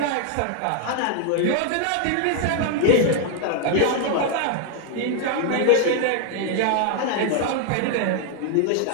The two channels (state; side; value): different; both; correlation 0.00